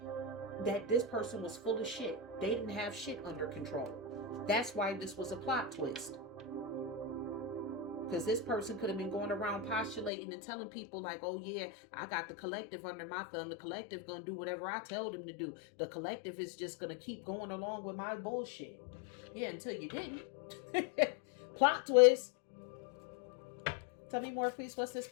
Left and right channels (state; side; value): drops out; right; at 10.1 s